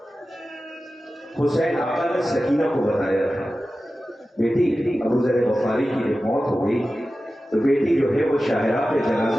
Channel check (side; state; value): both; normal; correlation 0.94